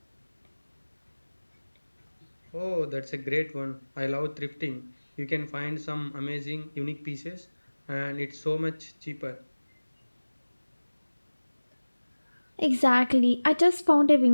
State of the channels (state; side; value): inverted; both; correlation -1.00